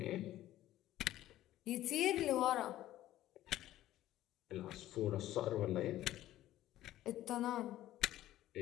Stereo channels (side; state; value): right; quieter; 14.2 dB